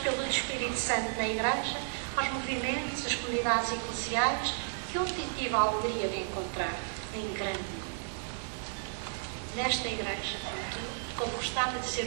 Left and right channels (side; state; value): left; silent; digital silence